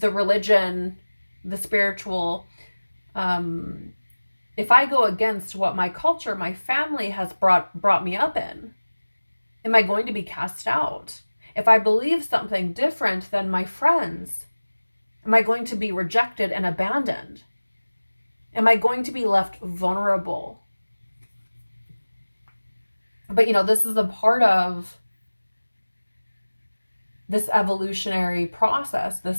the religion, the spiritual, if I go against what my culture, my family has brought me up in, am I going to be cast out? If I believe something different than my friends, am I going to be rejected and abandoned? Am I going to be left vulnerable? But, this is a part of this evolutionary process, this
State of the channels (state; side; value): inverted; both; correlation -1.00